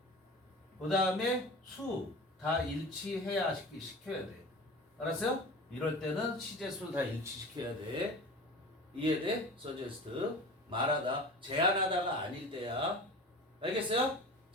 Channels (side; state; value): both; normal; correlation 0.35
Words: 그 다음에 수 다 일치해야 시켜야 돼. 알았어요? 이럴 때는 시제, 수 다 일치시켜야 돼. 이해돼? suggest. 말하다, 제안하다가 아닐 때야. 알겠어요?